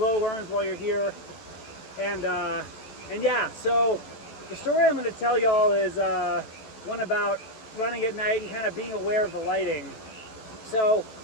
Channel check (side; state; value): right; late; 14 ms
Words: while you're here. And yeah, so the story I'm going to tell y'all is one about running at night and kind of being aware of the lighting. So